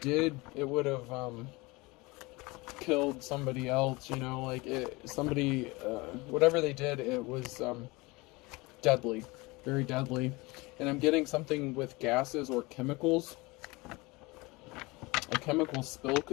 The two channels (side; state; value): right; quieter; 24.0 dB